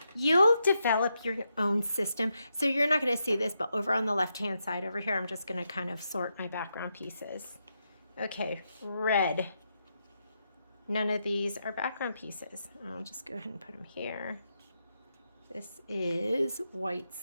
you'll develop your own system. So you're not going to see this, but over on the left-hand side over here, I'm just going to kind of sort my background pieces. Okay, red. None of these are background pieces. I'll just go ahead and put them here. This is white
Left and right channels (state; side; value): inverted; both; correlation -0.83